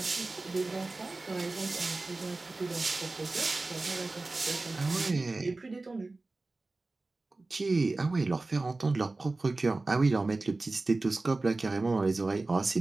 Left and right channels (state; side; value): quieter; left; 3.3 dB